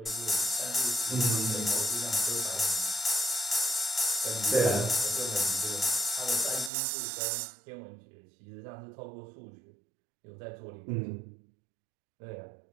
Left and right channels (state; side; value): drops out; left; at 6.7 s